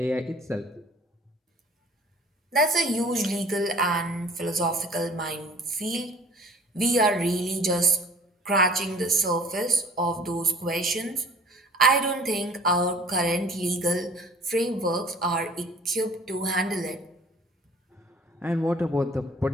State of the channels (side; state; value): both; normal; correlation 0.49